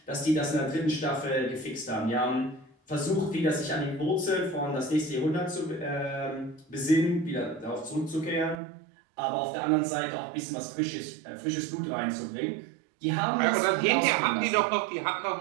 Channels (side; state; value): left; drops out; at 8.6 s